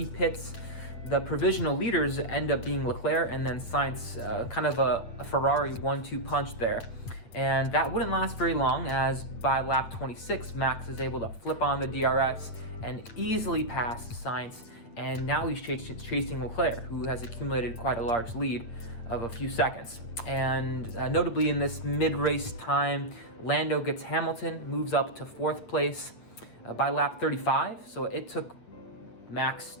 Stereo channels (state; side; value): late; right; 8.7 ms